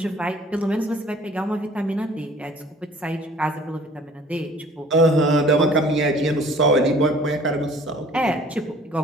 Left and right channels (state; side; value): normal; both; correlation 0.52